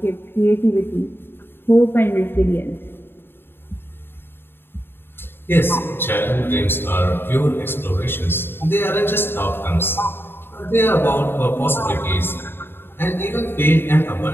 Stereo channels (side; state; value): right; late; 0.11 ms